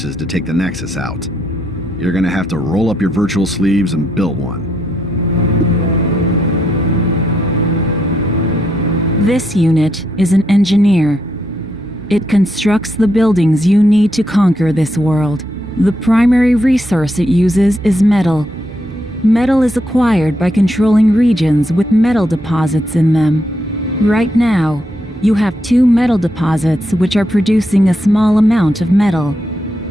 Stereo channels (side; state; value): right; noise; hum, 25 dB below the sound